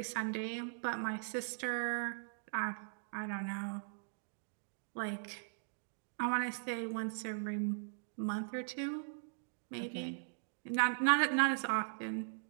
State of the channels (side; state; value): left; silent; digital silence